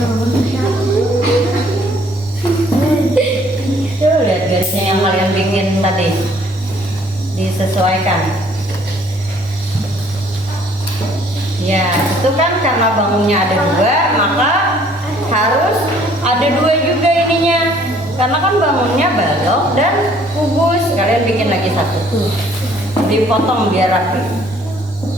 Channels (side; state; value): both; normal; correlation 0.60